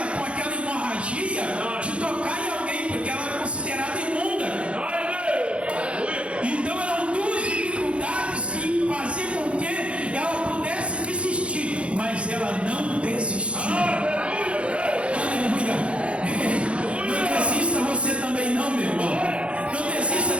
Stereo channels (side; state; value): left; late; 0.060 ms